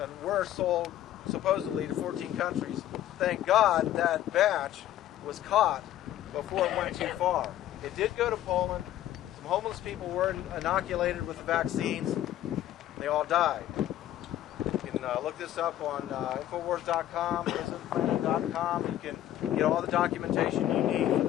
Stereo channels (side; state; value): right; quieter; 12.7 dB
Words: were sold supposedly to 14 countries. Thank God that batch was caught before it went too far. It did go to Poland. Some homeless people were inoculated with the vaccines. They all died. You can look this up on Infowars.com, PrisonPlanet.com. You can get all the documentation you need for